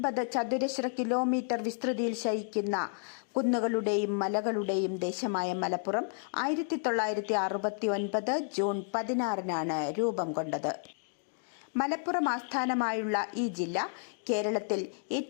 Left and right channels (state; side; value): silent; right; 56 dB below the other